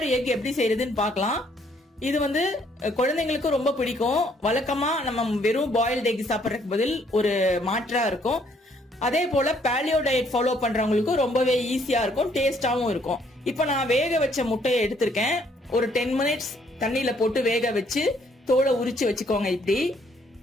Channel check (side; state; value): both; normal; correlation 0.66